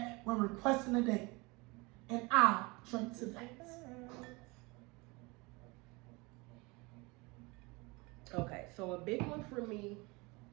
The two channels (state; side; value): quieter; left; 25.6 dB